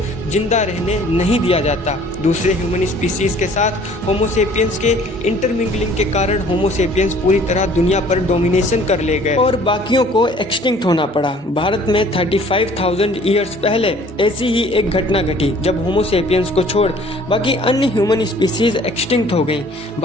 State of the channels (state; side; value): normal; both; correlation 0.54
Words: जिंदा रहने नहीं दिया जाता। दूसरे ह्यूमन स्पीसीज के साथ होमो सेपियंस के इंटरमिंगलिंग के कारण होमो सेपियंस पूरी तरह दुनिया पर डोमिनेशन कर ले गए और बाकियों को एक्सटिंक्ट होना पड़ा। भारत में 35,000 ईयर्स पहले ऐसी ही एक घटना घटी, जब होमो सेपियंस को छोड़ बाकी अन्य ह्यूमन स्पीसीज एक्सटिंक्ट हो गई।